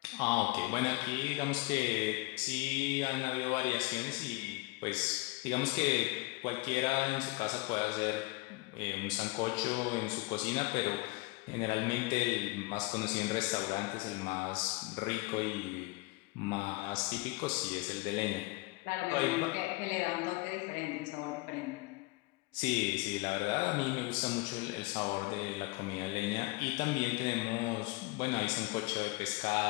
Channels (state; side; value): quieter; right; 23.8 dB